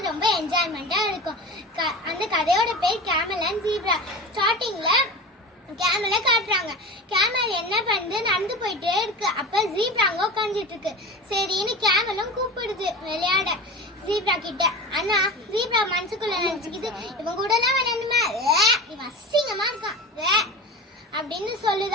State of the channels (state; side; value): normal; both; correlation 0.31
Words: ரொம்ப என்ஜாய்மெண்டா இருக்கும். அந்த கதையோட பேர் கேமல் அண்ட் ஜீப்ரா. ஸ்டார்டிங்ல கேமலை காட்டுறாங்க. கேமல் என்ன பண்ணுது, நடந்து போயிட்டே இருக்கு. அப்ப ஜீப்ரா அங்க உட்காந்துட்டு இருக்கு. சரின்னு கேமலும் கூப்பிடுது விளையாட ஜீப்ரா கிட்ட. ஆனா ஜீப்ரா மனசுக்குள்ள நினைச்சுக்கிது, இவன் கூட எல்லாம் விளையாண்டுமா, இவன் அசிங்கமா இருக்கான் அப்படின்னு